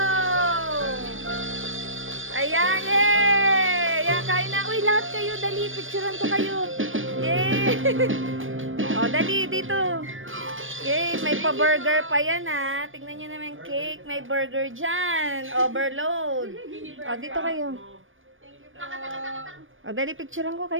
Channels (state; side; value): late; left; 0.58 ms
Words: Ayan, yay! Ayan, kain na. Uy, lahat kayo, dali. Picturean ko kayo. Yay! O, dali, dito. Yay, may pa-burger pa yan, ha. Tingnan nyo naman cake. May burger dyan. Overload. O, dito kayo. O, dali, picturean ko